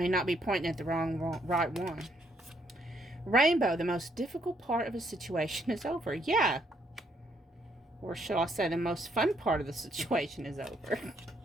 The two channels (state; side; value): normal; both; correlation 0.71